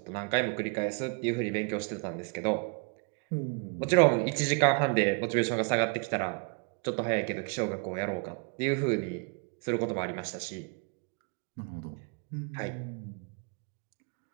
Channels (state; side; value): quieter; left; 34.3 dB